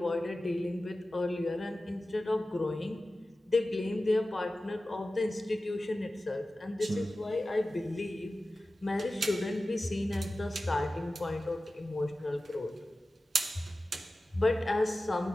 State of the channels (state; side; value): normal; both; correlation 0.95